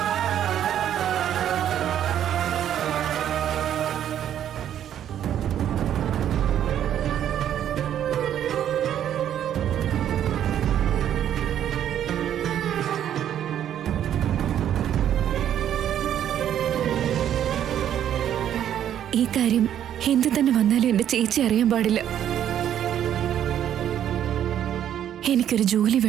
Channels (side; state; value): left; quieter; 10.4 dB